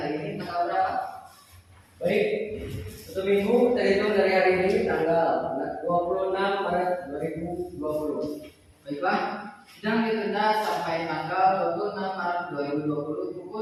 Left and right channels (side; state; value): both; identical; correlation 1.00